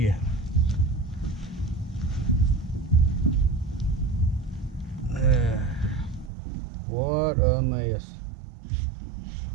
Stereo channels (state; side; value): drops out; left; at 6.3 s